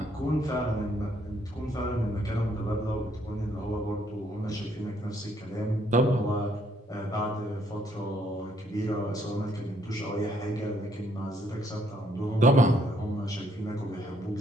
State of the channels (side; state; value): both; normal; correlation 0.69